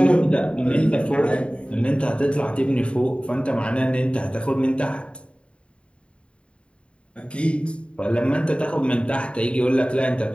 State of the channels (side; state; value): right; late; 0.058 ms